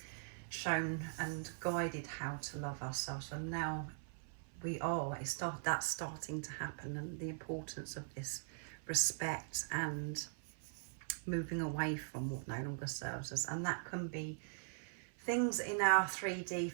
shown and guided how to love ourselves, and now we are. That's starting to happen, and the importance of this respect and moving away from what no longer serves us. And that can be things in our 3D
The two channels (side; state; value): left; silent; 50 dB below the other